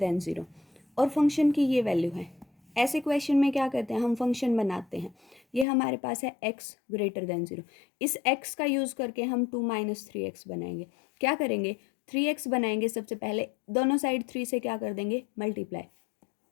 0 और फंक्शन की ये वैल्यू है। ऐसे क्वेश्चन में क्या करते हैं? हम फंक्शन बनाते हैं। ये हमारे पास है x ग्रेटर देन 0। इस x का यूज़ करके हम 2 - 3x बनाएंगे। क्या करेंगे? 3x बनाएंगे। सबसे पहले दोनों साइड 3 से क्या कर देंगे?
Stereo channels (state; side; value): drops out; right; at 5.7 s